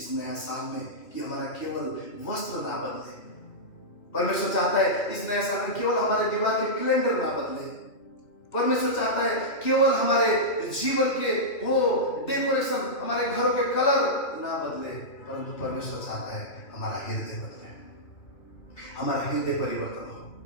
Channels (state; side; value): late; right; 2.7 ms